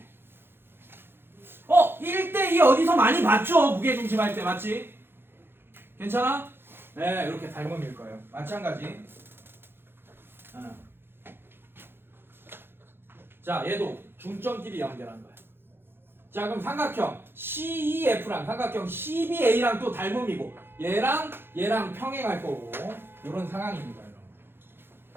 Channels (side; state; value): left; late; 0.10 ms